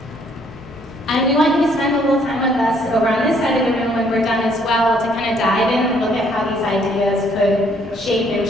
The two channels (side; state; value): both; normal; correlation 0.65